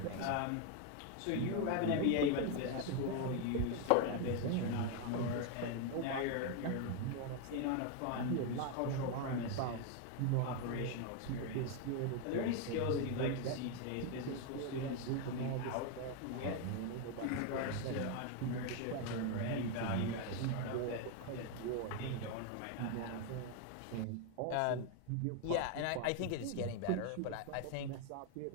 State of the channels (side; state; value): both; different; correlation 0.01